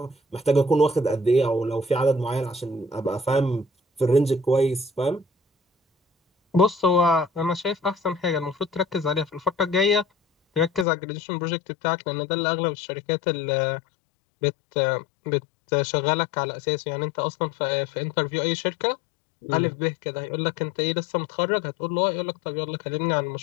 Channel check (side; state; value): right; drops out; at 10.9 s